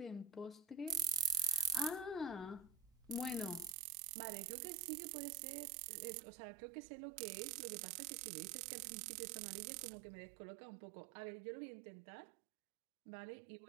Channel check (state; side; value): drops out; left; at 3.8 s